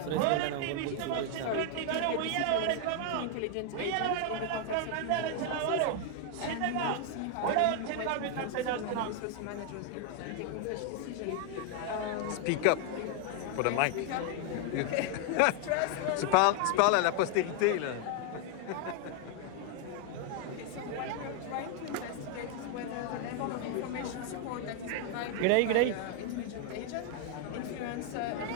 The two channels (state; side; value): different; both; correlation 0.01